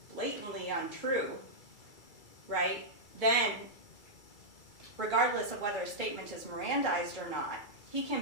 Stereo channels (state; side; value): late; right; 2.3 ms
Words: blatantly untrue, right, then regardless of whether a statement is Mirandized or not, he can